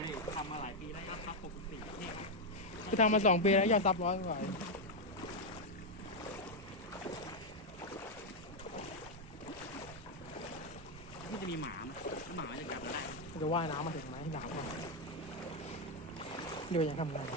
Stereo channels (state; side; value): normal; both; correlation 0.02